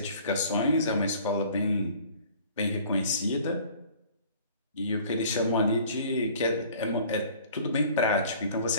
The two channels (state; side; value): inverted; both; correlation -0.50